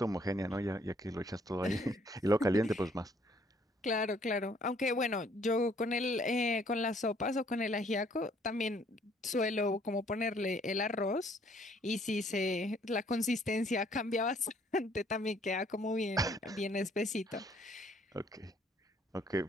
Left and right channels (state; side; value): normal; both; correlation 0.63